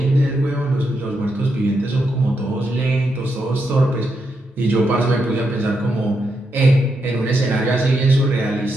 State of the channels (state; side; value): normal; both; correlation 0.82